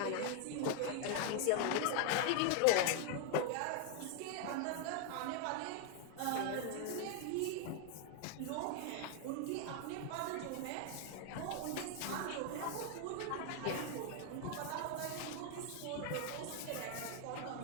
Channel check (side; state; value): both; different; correlation 0.00